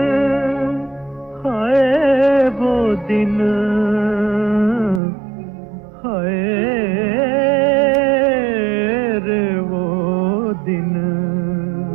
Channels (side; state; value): left; drops out; at 5.0 s